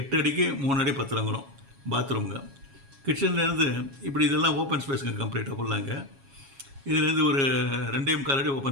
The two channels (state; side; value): late; left; 7.3 ms